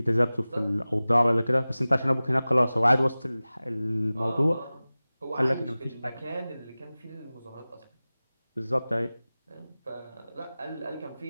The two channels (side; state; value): both; inverted; correlation -0.98